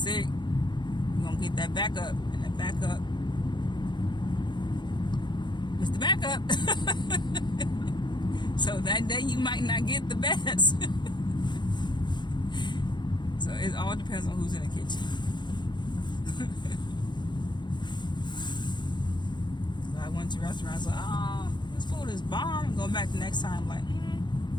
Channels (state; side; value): late; right; 0.22 ms